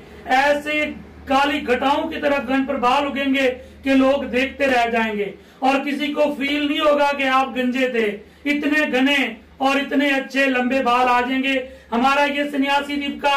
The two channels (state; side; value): identical; both; correlation 1.00